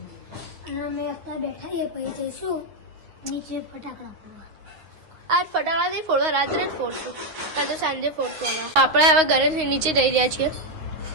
અને અમે અત્યારે બેઠા છીએ. પછી જઈશું નીચે ફટાકડા ફોડવા. આજ ફટાકડા નહીં ફોડવા, રાત્રે જ ફોડશું. કાં તો સાંજે ફોડશું. આપણે હવે ઘરે નીચે જઈ રહ્યા છીએ.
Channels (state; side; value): late; left; 9.5 ms